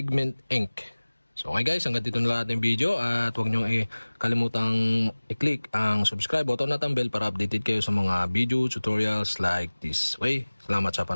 ink. So, okay guys, hanggang dito na lang ating video at huwag nyo kalimutang i-click ang subscribe button at ang bell para updated kayo sa mga video tutorials like this. Okay, salamat sa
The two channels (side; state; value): both; inverted; correlation -1.00